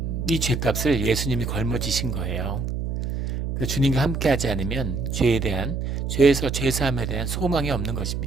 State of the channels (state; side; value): noise; right; hum, 2 dB below the sound